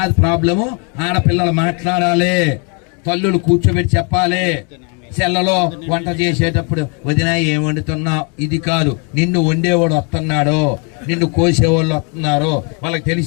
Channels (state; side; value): quieter; right; 36.3 dB